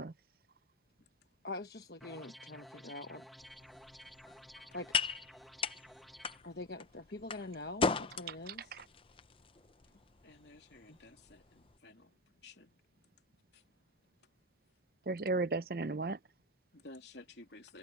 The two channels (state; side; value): normal; both; correlation 0.15